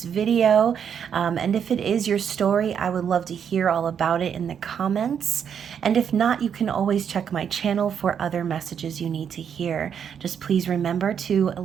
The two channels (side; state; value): left; quieter; 7.9 dB